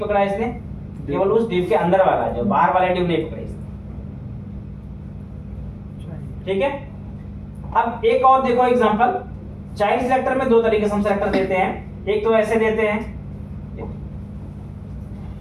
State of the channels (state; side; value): identical; both; correlation 1.00